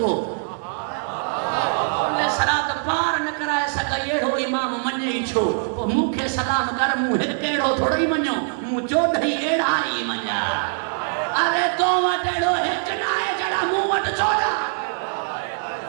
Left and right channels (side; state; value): left; silent; digital silence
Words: کل سرات پار نہ کرائے سگئی اڑو امام منجئی چھو. مکھے سلام کر مو ہک اڑو تھوڑی منجو, مو چوڑھئی اڑا ہی منجا. ارے تو وٹ اڑو ہک نہ ہے جڑا مو وٹ چوڑا.